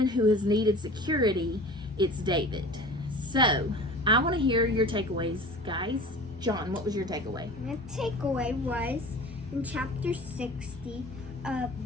who has needed security, it's David. So, I want to hear your takeaways, guys. John, what was your takeaway? My takeaway was in chapter 60,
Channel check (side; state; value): both; normal; correlation 0.39